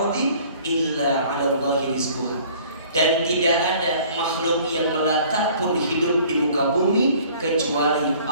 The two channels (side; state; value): both; inverted; correlation -0.53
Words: illa 'ala Allahi rizquha. Dan tidak ada makhluk yang melata pun hidup di muka bumi kecuali